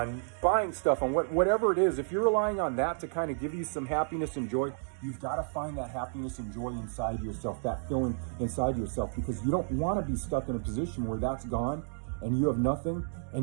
buying stuff, on whatever it is, if you're relying on that to kind of give you some happiness and joy, you've got to find that happiness and joy inside yourself, that feeling inside yourself, because you don't want to be stuck in a position where that's gone and you have nothing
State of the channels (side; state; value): left; silent; digital silence